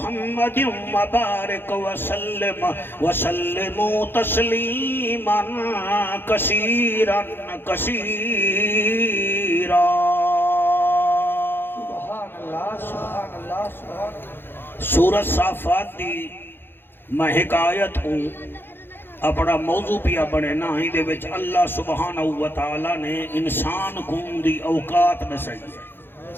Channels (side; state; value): right; late; 0.10 ms